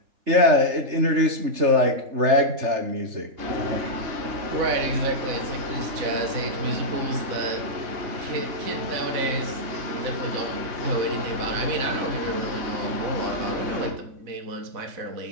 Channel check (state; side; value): late; left; 3.3 ms